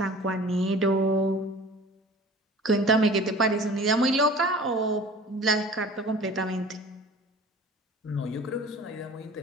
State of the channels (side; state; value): both; normal; correlation 0.43